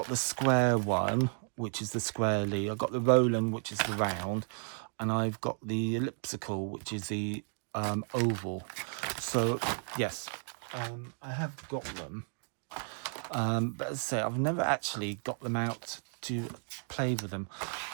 the square one, which is the squarely. I've got the Roland, which is the round, and I've got the elliptical, which is the oval. So yes, I have got them, but as I say, I've never actually got them out to play with them.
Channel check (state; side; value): silent; left; 56 dB below the other